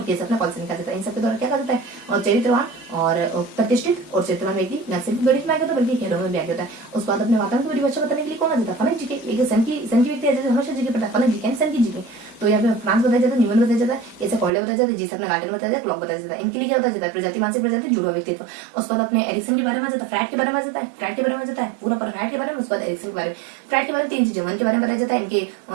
केस अपने कॉल्सनिका देता है। इन सबके द्वारा क्या कहा जाता है, और चरित्रवान और प्रतिष्ठित और चरित्रवान व्यक्ति न सिर्फ गणित में आगे होता है बल्कि खेलों में भी आगे होता है। उसके बाद अपने वातावरण की परिभाषा बताने के लिए कौन आ जाता है, फनक जी के। एक सन की व्यक्ति है जैसे हमेशा जी के पढ़ता है, फनक जी के सन की जी के। तो यहाँ पे फ्रांस बताया जाता है, न्यूमन बताया जाता है, कैसे कॉर्डे बताया जाता है, जिस अपने गार्डन बताया जाता है, क्लॉक बताया जाता है। इनके लिए क्या होता है, प्रजाति मानसिक प्रजाति जुड़वा व्यक्तित्व। उसके बाद अपने एरिक्सन के बारे में जाता है, फ्राइड के बारे में जाता है, पूरा पर फ्राइड के बारे में। उसके बाद एरिक्सन के बारे में, फ्राइड के बारे में 3 चीजें, मन के बारे में बताया जाता है, इनके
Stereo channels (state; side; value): drops out; left; at 14.5 s